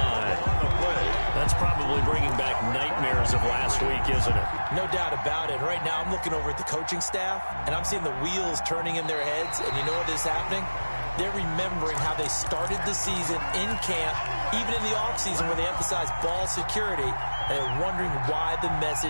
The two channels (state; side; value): inverted; both; correlation -1.00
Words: That's probably bringing back nightmares of last week, isn't it? No doubt about it. Right now I'm looking over at the coaching staff, and I'm seeing the wheels turning in their heads. And you know what is happening? They're remembering how they started the season in camp, even in the offseason where they emphasized ball security, and they're wondering why the